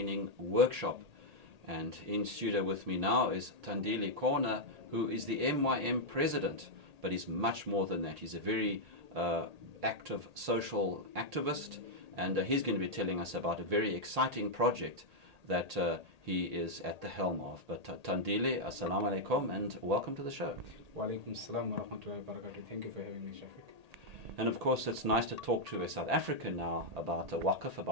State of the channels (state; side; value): late; left; 1.8 ms